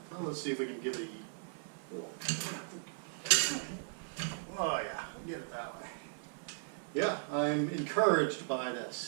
Well, let's see if we can give it a little... Oh yeah, get it that way. Yeah, I'm encouraged by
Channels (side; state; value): left; silent; 53 dB below the other